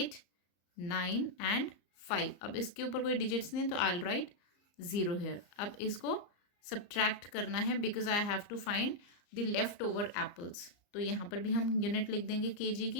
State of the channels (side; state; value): right; late; 34 ms